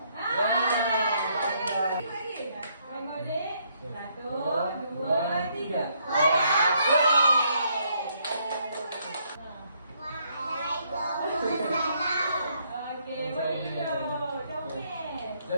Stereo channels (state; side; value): inverted; both; correlation -0.71